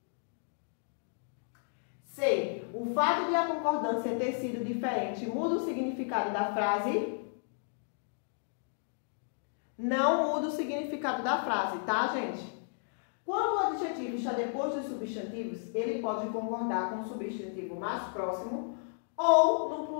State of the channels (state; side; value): silent; right; digital silence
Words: C. O fato de a concordância ter sido diferente muda o significado da frase? Não muda o significado da frase, tá, gente? Quando o adjetivo está depois dos substantivos, ele pode concordar com o substantivo mais próximo ou no